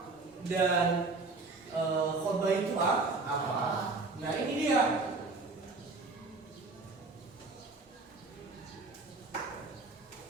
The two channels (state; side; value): quieter; left; 3.6 dB